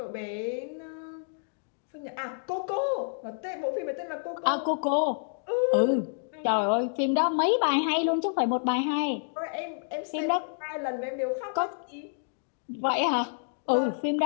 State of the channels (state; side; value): silent; right; digital silence